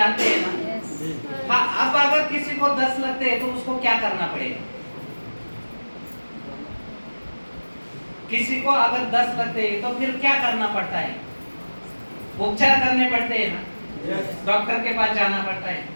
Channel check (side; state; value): both; inverted; correlation -1.00